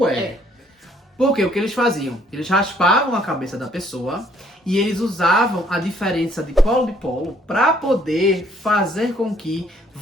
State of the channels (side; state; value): both; normal; correlation 0.64